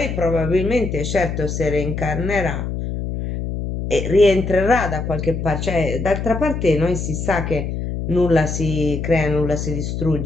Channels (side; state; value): left; noise; hum, 4 dB below the sound